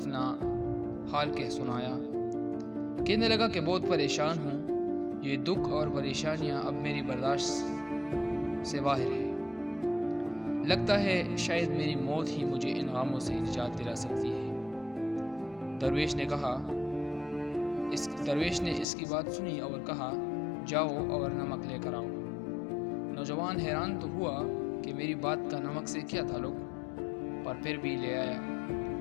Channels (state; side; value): drops out; right; at 18.9 s